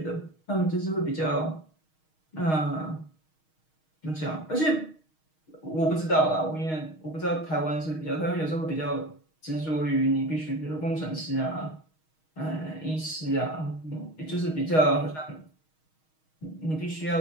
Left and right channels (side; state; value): right; late; 6.4 ms